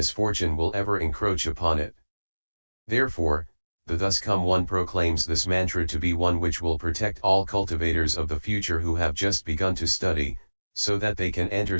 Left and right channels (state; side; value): inverted; both; correlation -1.00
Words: will ever encroach upon it. Therefore, the Thus Come One proclaims this mantra to be one which will protect all cultivators of the future who have just begun to study, so that they can enter